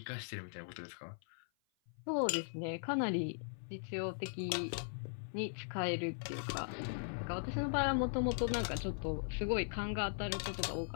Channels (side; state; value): right; silent; 52 dB below the other